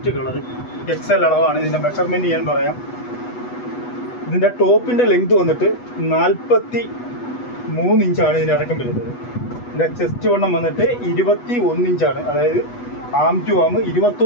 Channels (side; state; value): right; late; 8.1 ms